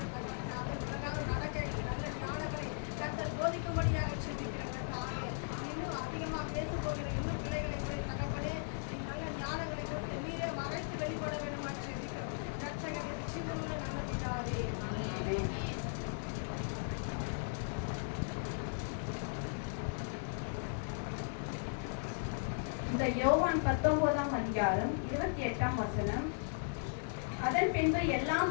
இந்த யோவான் 19ஆம் அதிகாரம் 28ஆம் வசனம். அதன் பின்பு எல்லாம்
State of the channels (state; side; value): silent; right; 53 dB below the other